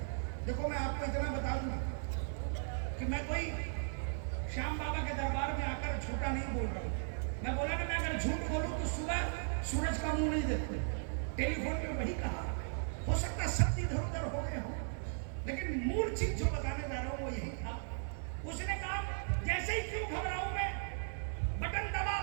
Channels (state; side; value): silent; left; 53 dB below the other